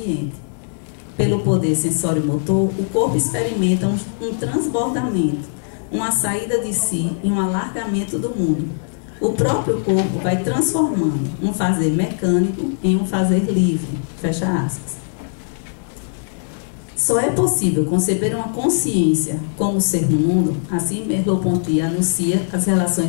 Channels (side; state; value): right; silent; digital silence